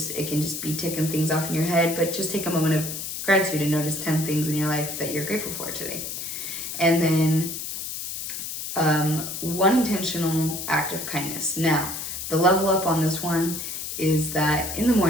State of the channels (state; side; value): noise; left; hiss, 6 dB below the sound